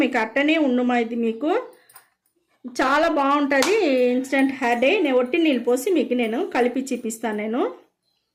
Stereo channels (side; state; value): both; identical; correlation 1.00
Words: మీకు అట్టనే ఉండుమా. ఇది మీకు చాలా బాగుంటుంది ఇన్స్టెంట్ హెయిర్ డై. నేను ఒట్టి నీళ్ళు పోసి మీకు నేను కలిపి చూపిస్తాను. నేను